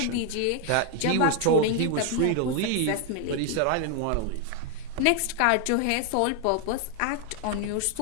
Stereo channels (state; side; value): different; both; correlation 0.01